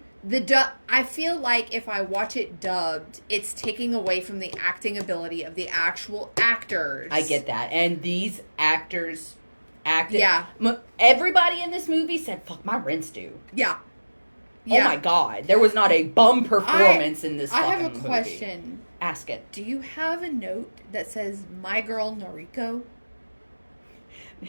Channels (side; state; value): both; inverted; correlation -1.00